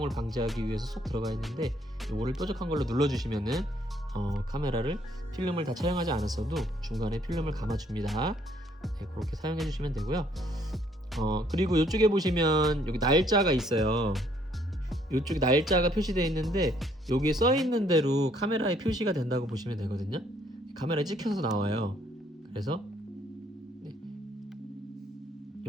방지하기 위해서 쏙 들어가 있는데, 요거를 뾰족한 걸로 눌러주시면은 카메라를 필름을 다 촬영하지 않았어도 중간에 필름을 감아줍니다. 네, 그렇게 사용해 주시면 되고요. 그리고 이쪽에 보시면 여기 날짜가 있어요. 이쪽에 날짜가 표시되어 있는데, 여기에 써 있는 대로 카메라에 표시가 된다고 보시면 되거든요. 카메라에 찍혀서 나와요. 그래서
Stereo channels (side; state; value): both; normal; correlation 0.66